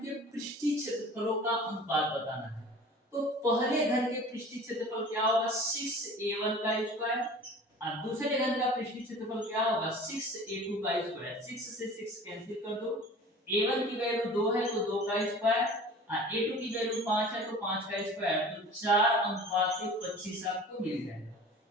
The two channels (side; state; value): both; normal; correlation 0.42